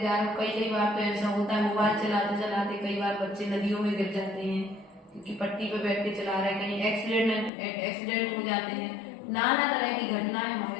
रहे हो। कई बार तो ऐसा होता है मोबाइल चलाते चलाते कई बार बच्चे नदियों में गिर जाते हैं, क्योंकि पट्टी पे बैठ के चला रहे हैं, कहीं एक्सीडेंट हो जाते हैं। नाना तरह की घटनाएं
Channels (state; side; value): drops out; right; at 7.5 s